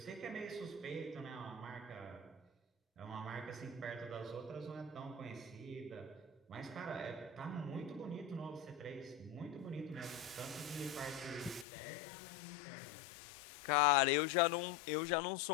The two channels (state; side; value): drops out; right; at 11.7 s